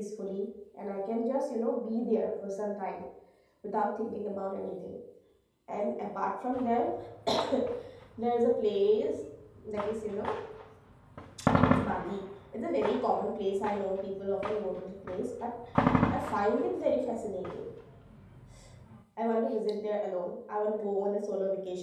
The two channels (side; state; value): both; identical; correlation 1.00